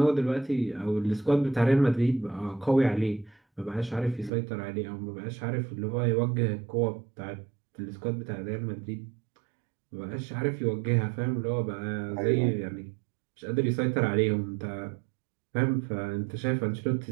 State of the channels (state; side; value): drops out; left; at 4.3 s